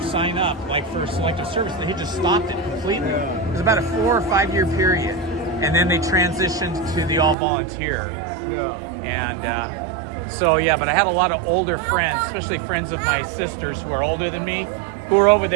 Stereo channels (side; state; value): left; drops out; at 7.4 s